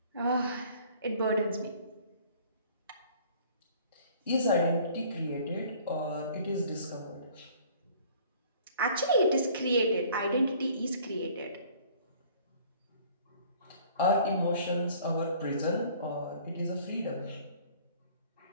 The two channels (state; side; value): inverted; both; correlation -0.53